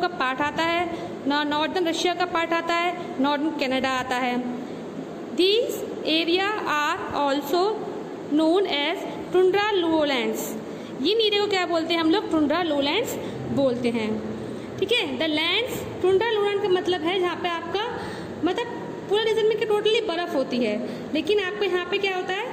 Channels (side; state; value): both; identical; correlation 1.00